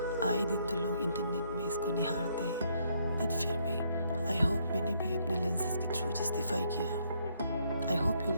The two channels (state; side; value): inverted; both; correlation -0.71